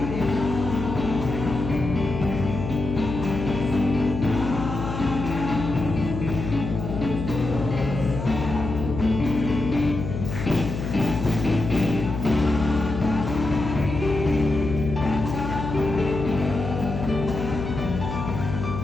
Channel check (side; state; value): left; noise; hum, 5 dB below the sound